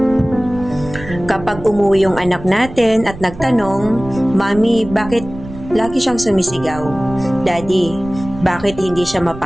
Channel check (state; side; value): noise; right; rumble, 14 dB below the sound